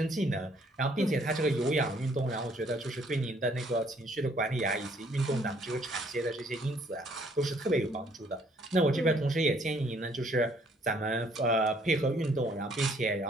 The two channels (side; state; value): both; normal; correlation 0.64